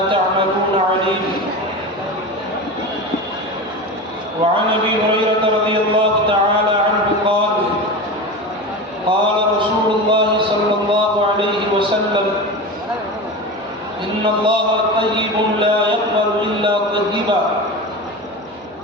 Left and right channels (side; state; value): both; normal; correlation 0.26